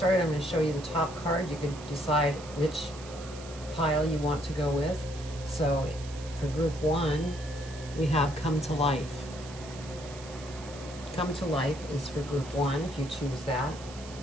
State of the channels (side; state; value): right; noise; hiss, 16 dB below the sound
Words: I'm going to show you the top card. You can decide which pile you want to go with. So for group 1, we have Come to Life. Come to Life is for group 1 if you choose that.